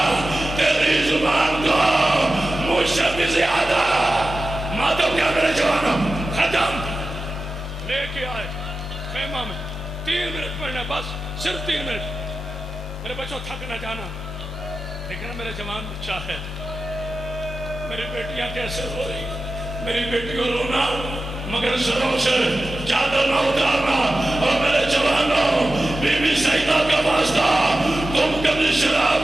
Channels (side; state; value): both; normal; correlation 0.93